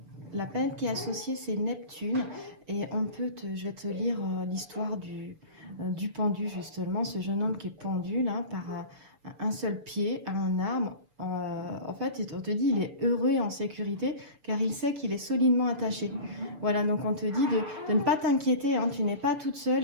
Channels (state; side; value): late; left; 6.8 ms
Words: La planète qui est associée, c'est Neptune. Et je vais te lire l'histoire du pendu, justement. Ce jeune homme qui est pendu là, par un seul pied à un arbre. En fait, on te dit il est heureux et en sécurité car il sait qu'il est solidement attaché. Voilà, donc on te dit de ne pas t'inquiéter, hein. Tu n'es pas toute